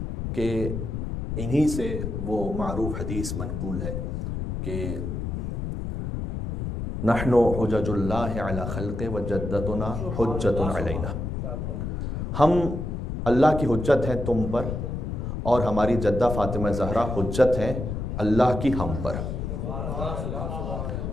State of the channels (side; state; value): left; noise; rumble, 4 dB below the sound